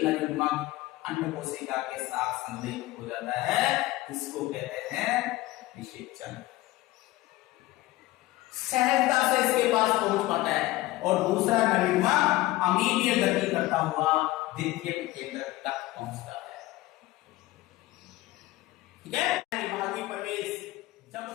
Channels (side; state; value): right; quieter; 18.1 dB